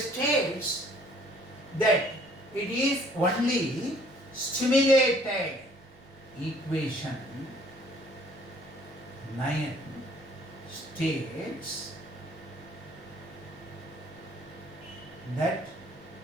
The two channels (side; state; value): right; noise; rumble, 27 dB below the sound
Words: states that it is only stimulated. Equation 9 states that